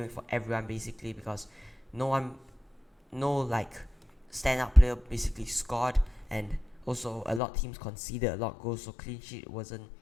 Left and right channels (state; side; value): drops out; right; at 7.4 s